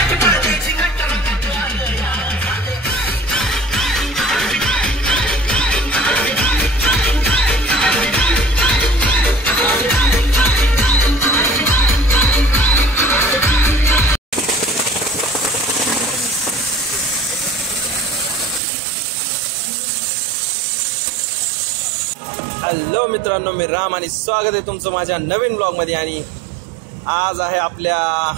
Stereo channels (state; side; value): drops out; left; at 18.6 s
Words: हॅलो मित्रांनो, मी राम आणि स्वागत आहे तुमचं माझ्या नवीन ब्लॉग मध्ये. आणि आज आहे आपल्या